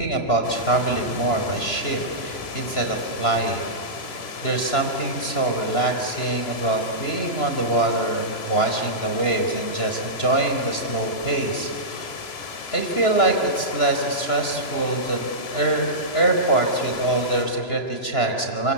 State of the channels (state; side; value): late; right; 2.9 ms